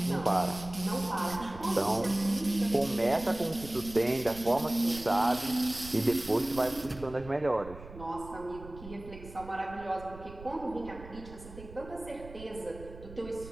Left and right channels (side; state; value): right; noise; rumble, 16 dB below the sound